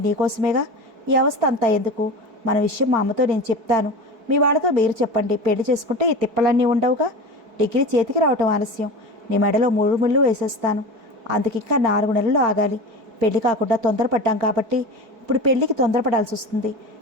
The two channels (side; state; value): left; late; 4.6 ms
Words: నీకోసమేగా. ఈ అవస్థ అంతా ఎందుకు? మన విషయం మా అమ్మతో నేను చెప్తాను. మీ వాళ్ళతో మీరు చెప్పండి. పెళ్లి చేసుకుంటే ఈ తిప్పలన్నీ ఉండవుగా. డిగ్రీ చేతికి రావటం ఆలస్యం. నీ మెడలో 3 ముళ్ళు వేసేస్తాను. అందుకింకా 4 నెలలు ఆగాలి. పెళ్లి కాకుండా తొందరపడ్డాం కాబట్టి ఇప్పుడు పెళ్లికి తొందరపడాల్సి వస్తుంది.